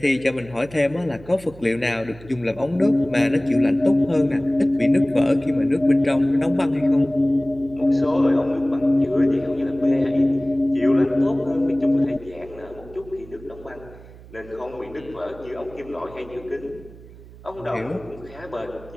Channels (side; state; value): right; noise; hum, 20 dB below the sound